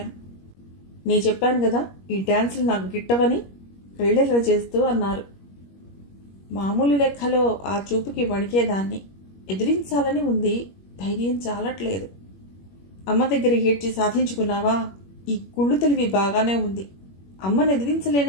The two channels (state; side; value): late; right; 21 ms